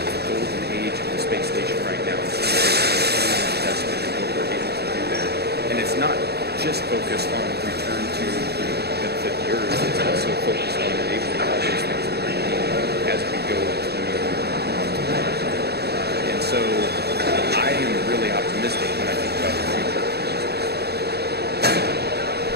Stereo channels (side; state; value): left; late; 0.47 ms